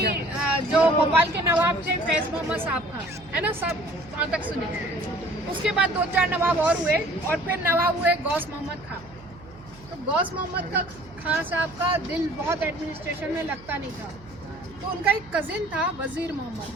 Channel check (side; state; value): right; noise; hum, 20 dB below the sound